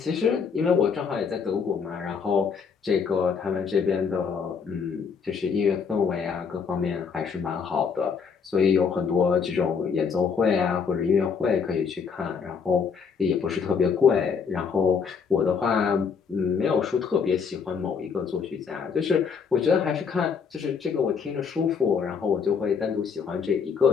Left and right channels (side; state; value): right; quieter; 6.1 dB